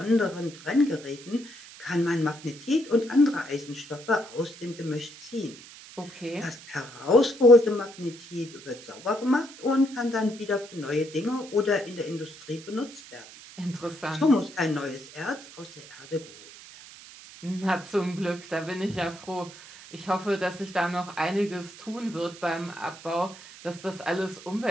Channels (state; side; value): noise; right; hiss, 18 dB below the sound